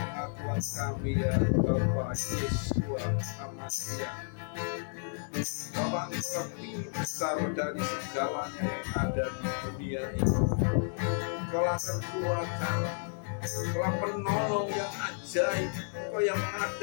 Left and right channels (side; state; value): right; silent; digital silence